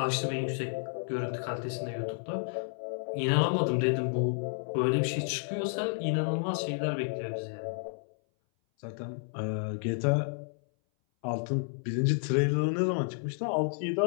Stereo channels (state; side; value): silent; right; 57 dB below the other